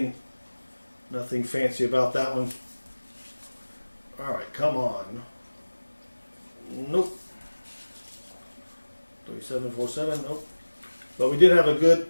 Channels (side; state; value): both; inverted; correlation -1.00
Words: fancy about that one. All right, come on. Nope. 3747. Nope. But we did have a good